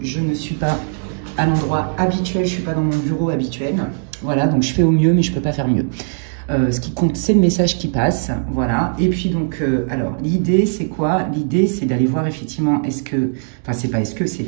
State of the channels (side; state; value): left; silent; 67 dB below the other